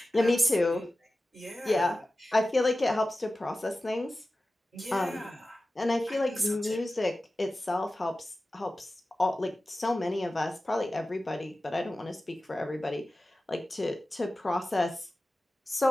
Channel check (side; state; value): both; normal; correlation 0.95